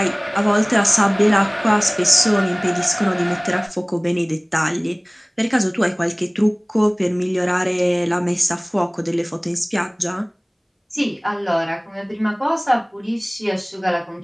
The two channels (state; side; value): identical; both; correlation 1.00